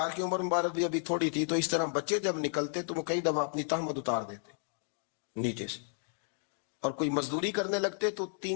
کی عمر مبارک بھی ابھی تھوڑی تھی، تو اس طرح بچے جب نکلتے تو وہ کئی دفعہ اپنی تہمت اتار دیتے نیچے سے، اور کوئی مزدوری کرنے لگتے تو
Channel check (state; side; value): silent; right; 56 dB below the other